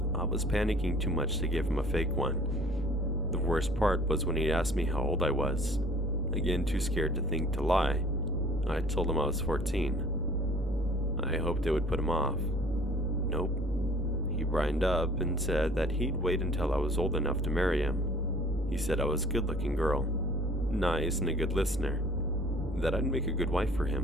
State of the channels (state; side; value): normal; both; correlation 0.51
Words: I was panicking too much to give him a fake one. The worst part was when he asked me how old I was. Again, too scared to think to lie, I told him I was 14. I hoped it would put him off. Nope. He brined up and said that he'd wait until I was old enough to marry him. He said I was a good-looking girl, nice and a good listener, that I'd make a good wife for